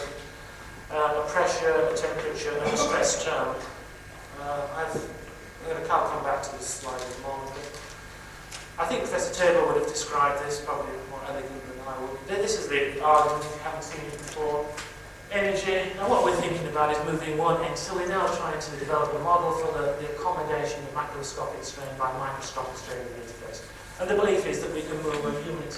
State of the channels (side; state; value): both; identical; correlation 1.00